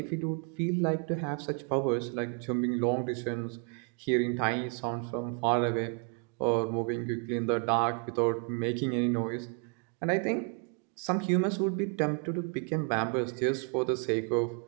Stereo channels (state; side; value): quieter; left; 37.7 dB